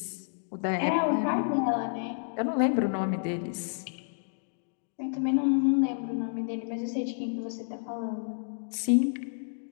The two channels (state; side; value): silent; right; digital silence